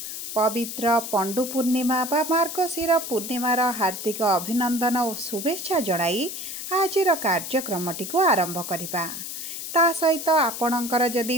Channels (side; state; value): left; noise; hiss, 7 dB below the sound